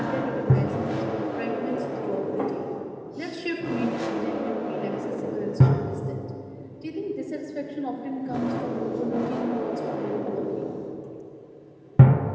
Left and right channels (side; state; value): both; identical; correlation 1.00